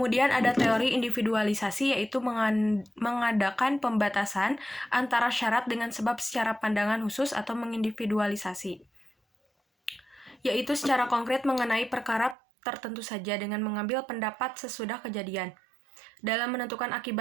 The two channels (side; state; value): left; drops out; at 12.4 s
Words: ada teori individualisasi yaitu mengadakan pembatasan antara syarat dengan sebab secara pandangan khusus atau mengindividualisasi, yaitu secara konkret mengenai perkara tertentu saja dengan mengambil pendapat sesudah kejadian. Dalam menentukan